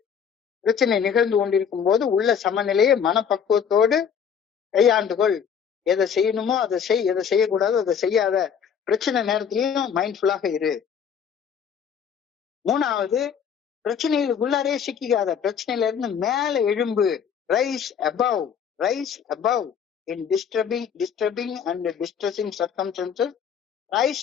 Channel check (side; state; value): right; quieter; 7.5 dB